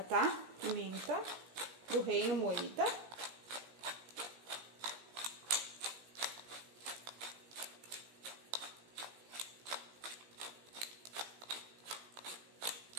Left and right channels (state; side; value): late; left; 17 ms